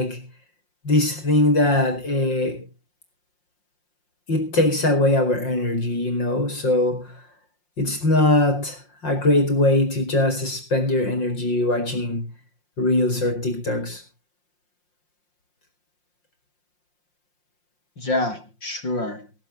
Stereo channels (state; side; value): late; right; 5.6 ms